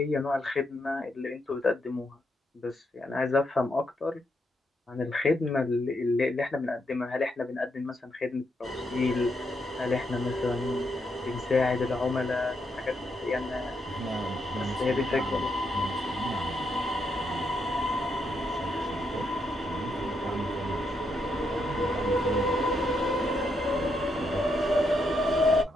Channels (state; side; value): normal; both; correlation 0.79